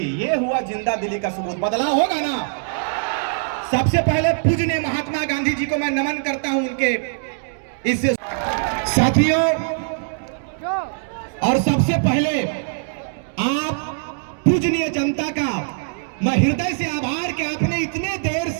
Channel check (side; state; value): left; silent; digital silence